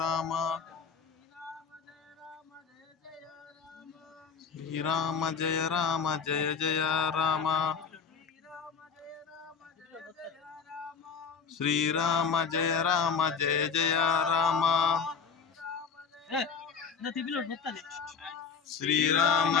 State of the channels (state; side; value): quieter; right; 5.9 dB